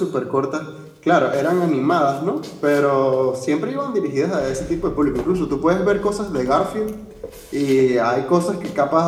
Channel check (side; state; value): both; identical; correlation 1.00